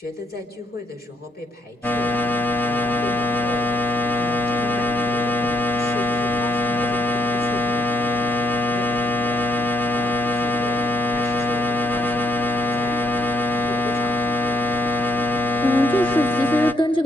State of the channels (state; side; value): normal; both; correlation 0.74